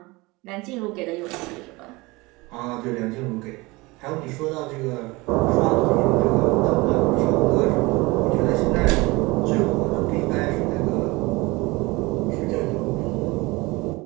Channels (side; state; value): left; quieter; 23.2 dB